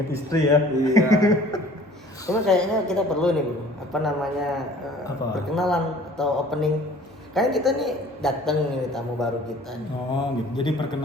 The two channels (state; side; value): normal; both; correlation 0.50